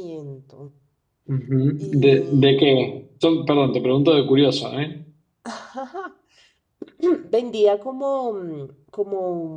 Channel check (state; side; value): identical; both; correlation 1.00